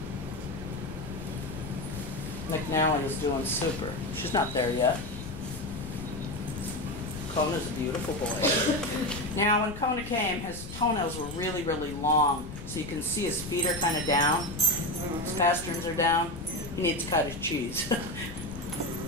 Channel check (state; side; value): noise; left; rumble, 12 dB below the sound